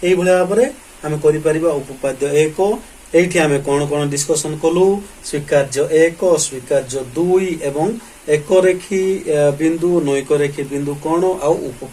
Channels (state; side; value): identical; both; correlation 1.00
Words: एई भलिया भाबरे आमे करि परिबा उपपाद्य 1 एठी आमे कोन कोन डिस्कशन कलु स्वीकार्य 1 स्वीकार्य 2 एवं एक रेखी बिंदु नैक रेखी बिंदु कोन आ